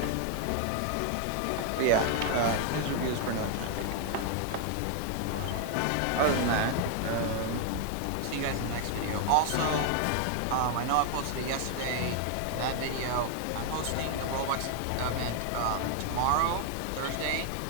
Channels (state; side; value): different; both; correlation 0.00